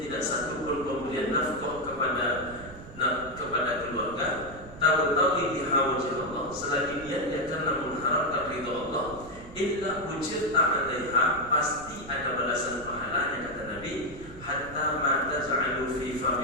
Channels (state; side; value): noise; right; rumble, 16 dB below the sound